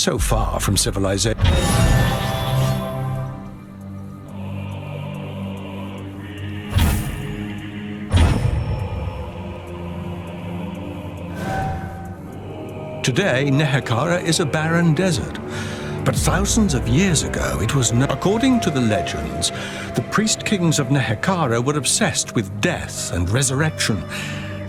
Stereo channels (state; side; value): identical; both; correlation 1.00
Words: far from civilization. Today, Nehekara is a barren desert. But thousands of years ago, it was not. According to the legends, the priest kings of Nehekara were obsessed with death and resurrection.